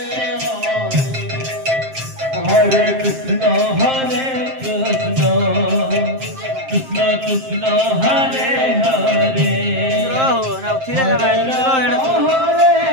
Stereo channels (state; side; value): late; left; 7.6 ms